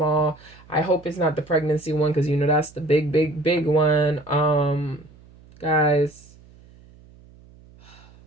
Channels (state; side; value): noise; right; hum, 25 dB below the sound